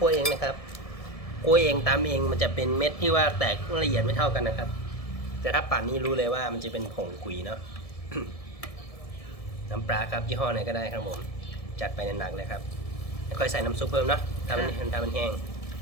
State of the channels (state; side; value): late; right; 1.7 ms